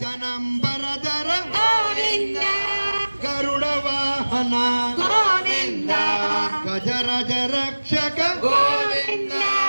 గోవింద గరుడ వాహన గోవింద గజరజ రక్షక గోవింద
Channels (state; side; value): inverted; both; correlation -1.00